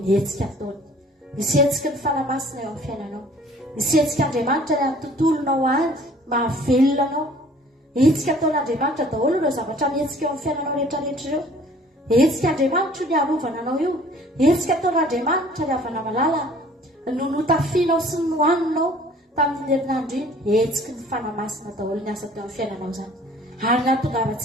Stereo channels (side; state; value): both; normal; correlation 0.53